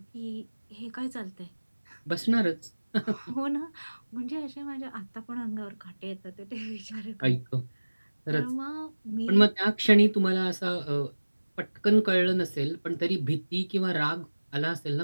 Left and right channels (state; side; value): inverted; both; correlation -1.00